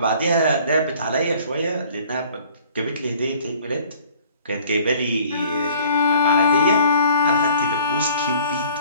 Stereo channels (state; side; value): inverted; both; correlation -0.53